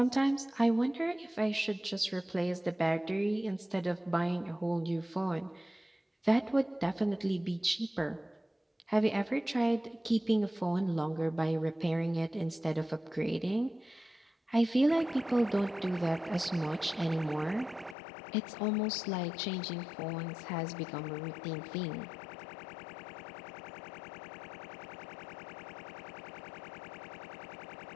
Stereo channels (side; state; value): right; drops out; at 17.9 s